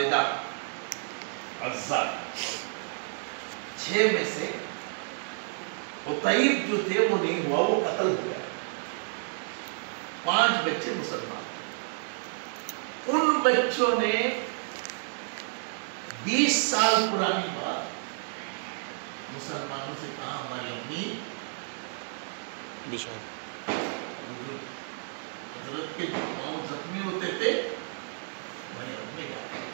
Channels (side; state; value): left; silent; 57 dB below the other